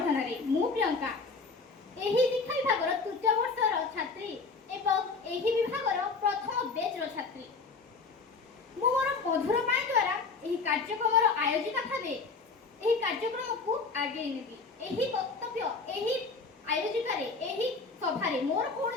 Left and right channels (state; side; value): quieter; right; 4.4 dB